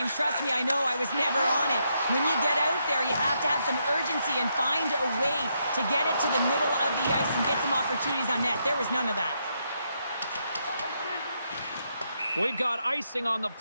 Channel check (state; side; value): inverted; both; correlation -0.79